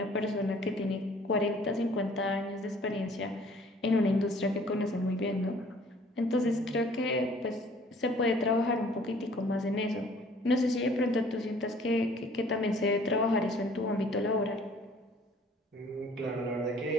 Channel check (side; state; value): both; normal; correlation 0.55